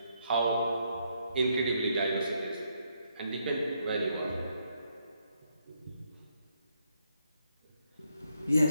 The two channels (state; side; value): inverted; both; correlation -0.76